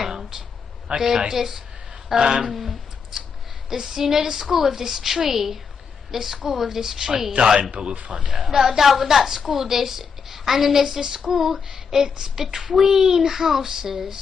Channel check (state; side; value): quieter; right; 6.0 dB